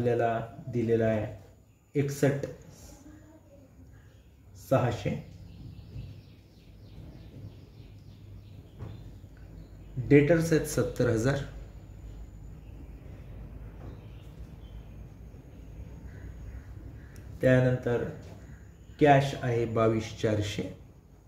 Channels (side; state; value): both; identical; correlation 1.00